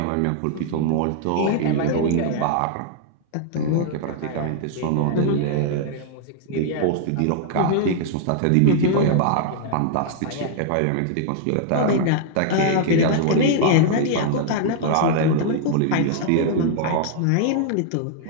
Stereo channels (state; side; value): different; both; correlation -0.01